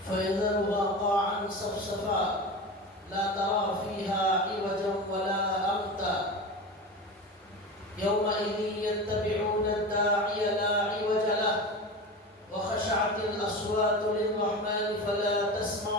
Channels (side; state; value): both; normal; correlation 0.27